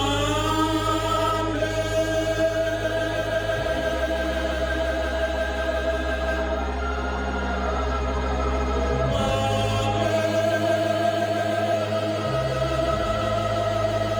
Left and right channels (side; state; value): both; identical; correlation 1.00